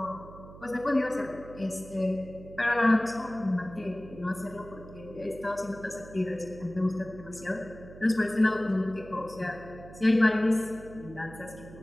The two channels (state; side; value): noise; right; hum, 16 dB below the sound